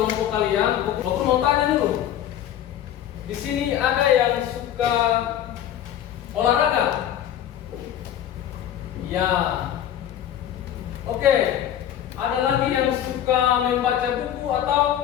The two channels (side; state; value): right; quieter; 10.8 dB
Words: kalian, Bapak Guru mau tanya dulu. Di sini ada yang suka olahraga? Ya. Oke. Ada lagi yang suka membaca buku atau